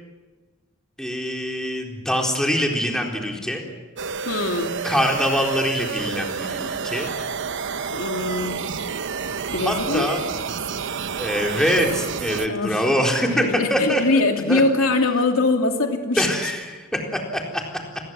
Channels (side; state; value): both; normal; correlation 0.36